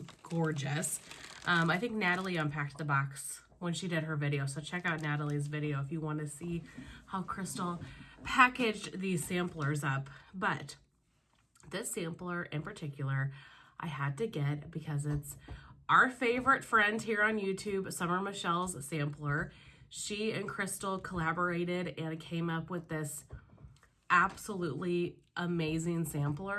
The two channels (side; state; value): both; identical; correlation 1.00